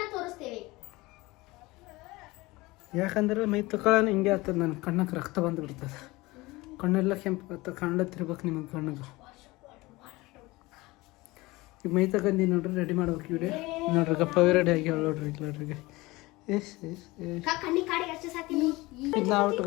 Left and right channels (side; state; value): right; quieter; 21.4 dB